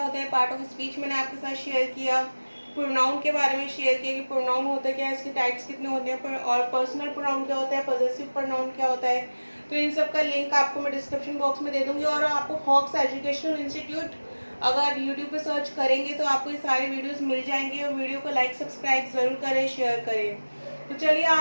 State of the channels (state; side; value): inverted; both; correlation -1.00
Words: हैं, पार्ट ऑफ स्पीच मैंने आपके साथ शेयर किया, प्रोनाउन के बारे में शेयर किया कि प्रोनाउन होता क्या है, इसके टाइप्स कितने होते हैं और पर्सनल प्रोनाउन क्या होता है, पॉजेसिव प्रोनाउन क्या होता है। तो इन सब का लिंक आपको मैं डिस्क्रिप्शन बॉक्स में दे दूंगी और आपको हॉक्स एजुकेशनल इंस्टीट्यूट अगर यूट्यूब पे सर्च करेंगे तो आपको ये सारे वीडियोस मिल जाएंगे। और वीडियो को लाइक सब्सक्राइब जरूर करें, शेयर करें। तो चलिए